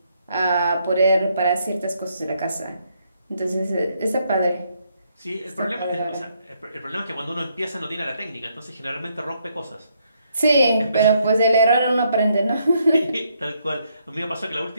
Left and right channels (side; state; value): both; inverted; correlation -0.73